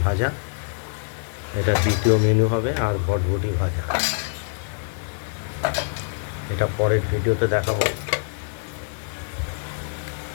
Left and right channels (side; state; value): right; silent; digital silence